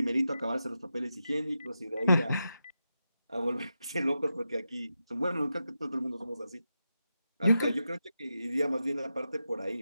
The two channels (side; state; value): both; inverted; correlation -0.89